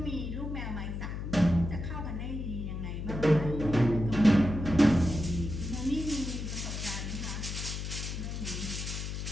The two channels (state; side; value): noise; left; hum, 5 dB below the sound